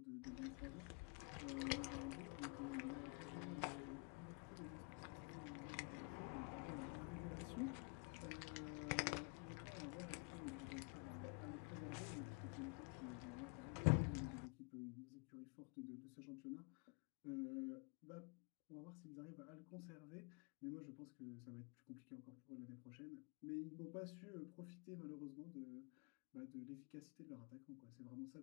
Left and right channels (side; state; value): right; quieter; 32.5 dB